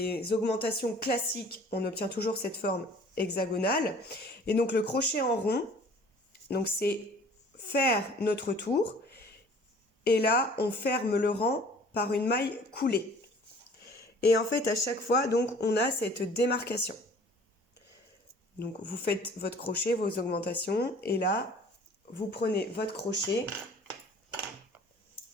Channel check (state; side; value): normal; both; correlation 0.51